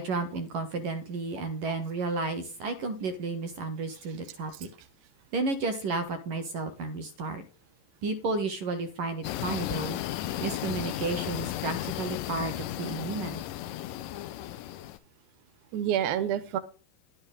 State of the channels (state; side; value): late; left; 11 ms